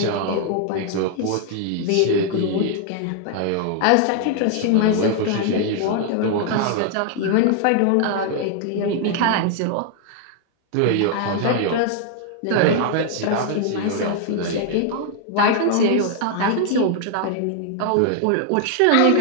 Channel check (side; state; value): both; different; correlation 0.00